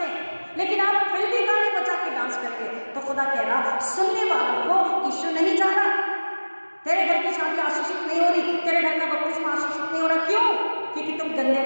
हैं, लेकिन आप फिल्मी गाने बजा के डांस करके, तो खुदा कह रहा सुनने वालों को यीशु नहीं चाह रहा। तेरे घर की शादी आशीषित नहीं हो रही, तेरे घर का बपतिस्मा आशीषित नहीं हो रहा। क्यों? क्योंकि तुम गंदे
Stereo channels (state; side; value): inverted; both; correlation -1.00